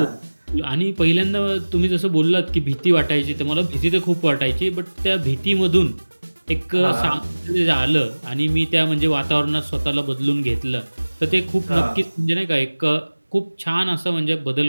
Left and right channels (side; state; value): both; inverted; correlation -1.00